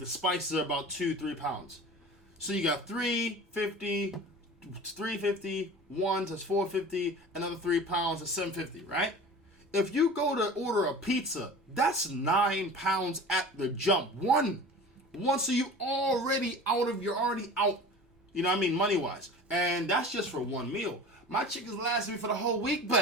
spices are about 2-3 pounds. So you got $3.50, one that's $4.50, another 3 pounds is $7.50, right? If you go to order a pizza, that's 9 pounds at the jump. One, so you're already out. You know what I mean, money wise, and that's just for one meal. My chicken's lasting me for the whole week,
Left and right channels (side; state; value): both; normal; correlation 0.38